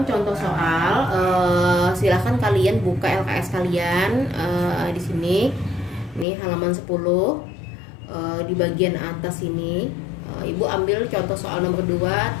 contoh soal. Silahkan kalian buka LKS kalian di sini. Ini halaman 10. Di bagian atas ini, Ibu ambil contoh soal nomor 2,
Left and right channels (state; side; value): drops out; right; at 6.2 s